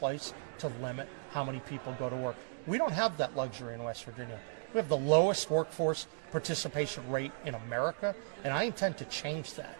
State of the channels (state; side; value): silent; left; digital silence